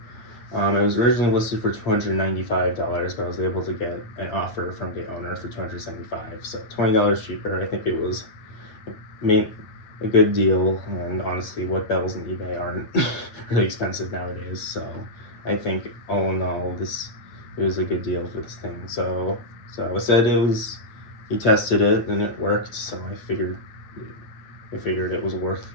It was originally listed for $295, but I was able to get an offer from the owner for $275, so $20 cheaper. I think it was a good deal, and honestly, what bells in eBay aren't really expensive nowadays, so I think all in all, it was a good deal for this thing. So I said he tested it and it worked, so I figured it was worth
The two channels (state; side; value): late; right; 8.8 ms